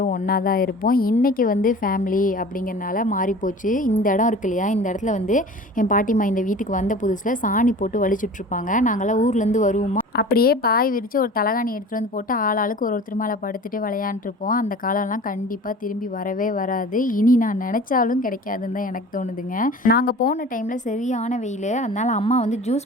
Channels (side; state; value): both; normal; correlation 0.40